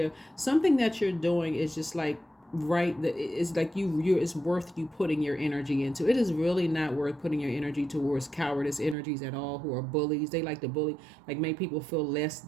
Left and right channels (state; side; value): drops out; left; at 9.0 s